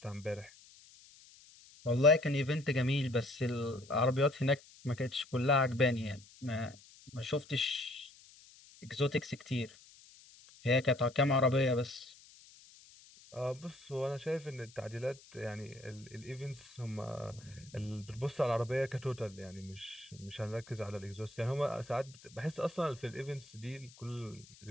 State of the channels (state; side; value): noise; left; hiss, 23 dB below the sound